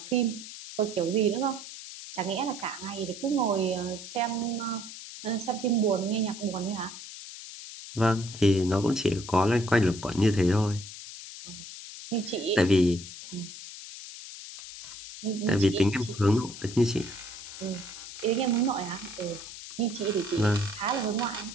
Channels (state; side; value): noise; left; hiss, 12 dB below the sound